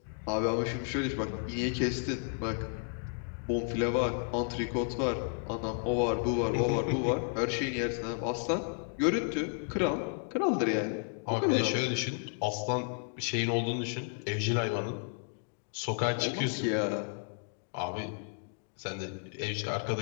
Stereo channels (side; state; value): right; silent; 55 dB below the other